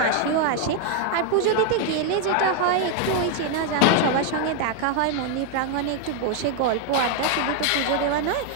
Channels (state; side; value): different; both; correlation 0.00